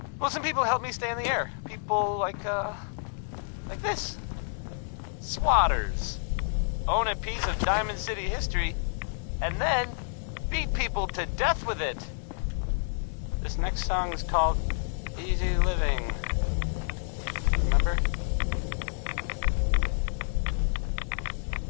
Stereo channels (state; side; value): silent; right; digital silence